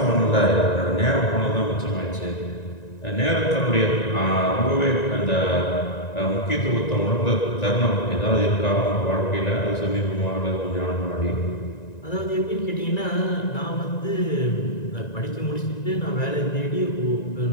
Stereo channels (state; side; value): late; right; 1.9 ms